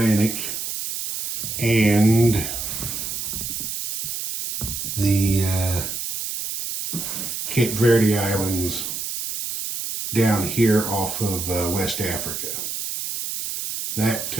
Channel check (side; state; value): right; noise; hiss, 5 dB below the sound